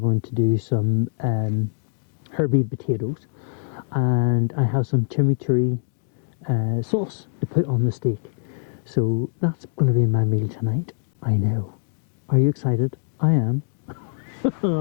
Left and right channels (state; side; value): silent; right; digital silence